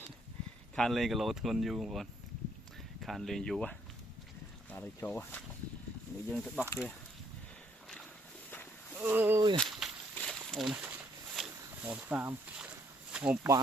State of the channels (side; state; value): both; normal; correlation 0.68